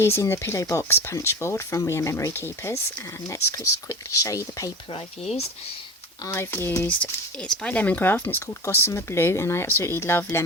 the pillow box punch board from We Are Memory Keepers, and let's just quickly show you the paper I've used. It's by Lemoncraft and it's called Gossamer Blue, and I absolutely love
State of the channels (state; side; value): normal; both; correlation 0.32